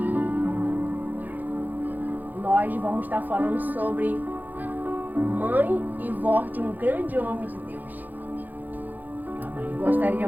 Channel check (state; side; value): late; left; 0.084 ms